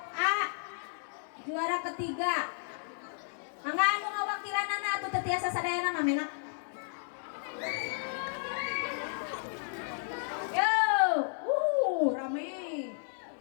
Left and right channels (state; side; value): silent; right; 56 dB below the other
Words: A juara ketiga. Mangga anu ngawakilanana atuh teu tiasa sadayana mah menak. Yo, rame.